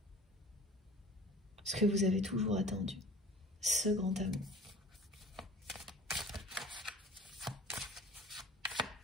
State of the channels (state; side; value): normal; both; correlation 0.45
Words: ce que vous avez toujours attendu, ce grand amour.